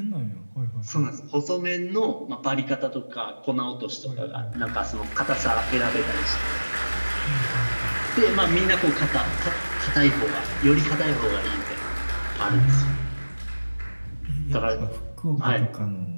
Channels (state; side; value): inverted; both; correlation -1.00